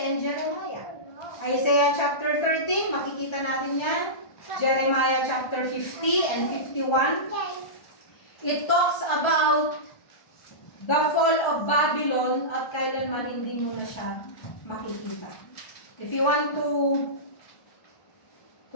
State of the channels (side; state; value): right; late; 1.3 ms